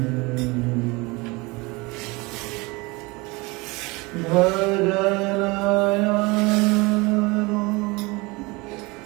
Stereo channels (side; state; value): left; quieter; 25.0 dB